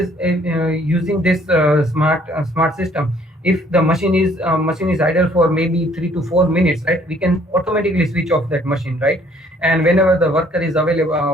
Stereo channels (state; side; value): normal; both; correlation 0.61